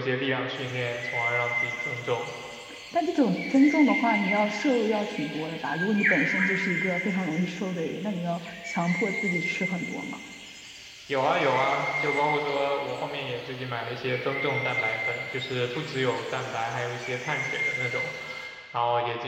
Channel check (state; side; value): identical; both; correlation 1.00